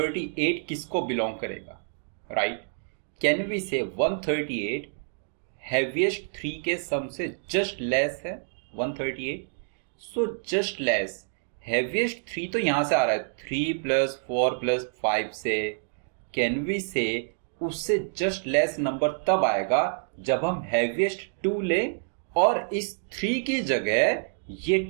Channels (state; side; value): silent; left; digital silence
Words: किसको बिलोंग करेगा, राइट? कैन वी से 138 हैवीएस्ट 3 के सम से जस्ट लेस है 138. सो जस्ट लेस हैवीएस्ट 3 तो यहां से आ रहा है 3 प्लस 4 प्लस 5 से. कैन वी से उससे जस्ट लेस नंबर तब आएगा जब हम हैवीएस्ट 2 लें और इस 3 की जगह ये